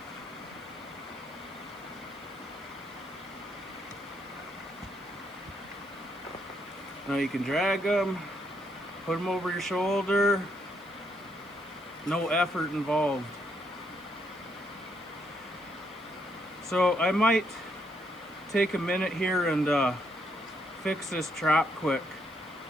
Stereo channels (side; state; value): right; noise; hiss, 28 dB below the sound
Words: now you can drag them, put them over your shoulder, no effort involved. So I might take a minute here and fix this trap quick.